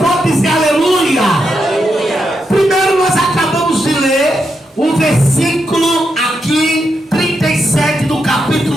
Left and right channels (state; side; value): normal; both; correlation 0.83